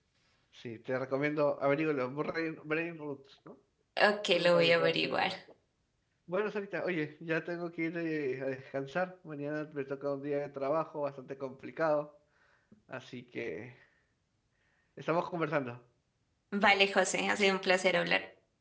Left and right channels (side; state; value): both; identical; correlation 1.00